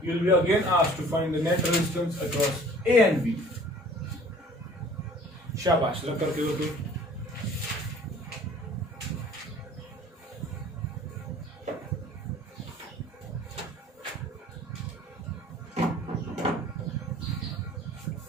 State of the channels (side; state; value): both; normal; correlation 0.50